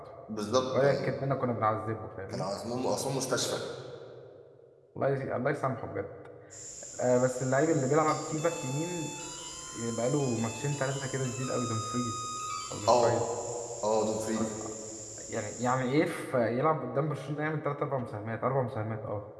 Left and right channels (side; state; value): both; identical; correlation 1.00